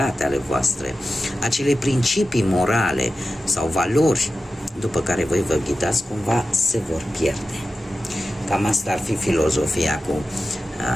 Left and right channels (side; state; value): both; normal; correlation 0.93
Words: ale voastre, acele principii morale sau valori după care voi vă ghidați, cumva se vor pierde. Cam asta ar fi filozofia cu